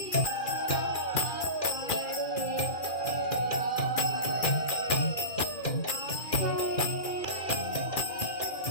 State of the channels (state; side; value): late; right; 2.4 ms